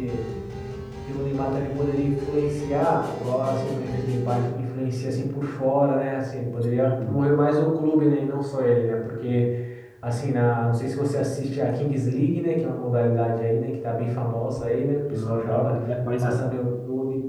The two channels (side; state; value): both; identical; correlation 1.00